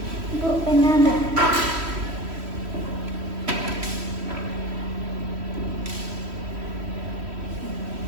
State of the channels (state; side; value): late; left; 3.1 ms